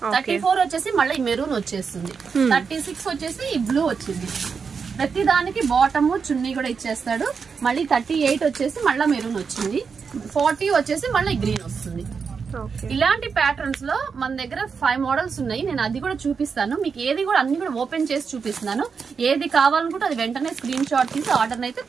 34 వచ్చేసి మళ్ళీ మెరూన్ వచ్చేస్తుంది. 36 వచ్చేసి ఈ బ్లూ వచ్చింది. ప్రతి దానికి బాటమ్ చున్నీ కూడా ఇచ్చేస్తాడు. మళ్ళీ 38 వచ్చేసి మళ్ళీ మెరూన్ వచ్చింది. 40 వచ్చేసి మళ్ళీ గ్రీన్ వస్తుంది. ఇలాంటి ప్యాటర్న్స్ లో మన దగ్గర 5 మోడల్స్ ఉన్నాయి. నేను అది కూడా చూపిస్తాను మీకు. ఏది కూడా అన్ని కూడా ఓపెన్ చేసి చూపిస్తున్నాను. ఏది కావాలనుకుంటే అది వెంటనే స్క్రీన్ షాట్ తీసి ఆర్డర్ అయితే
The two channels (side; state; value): left; quieter; 5.7 dB